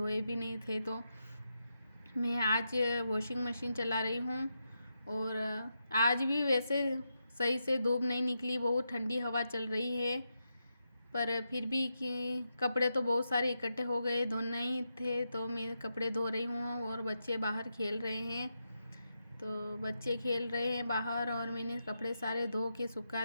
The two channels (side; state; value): both; inverted; correlation -0.86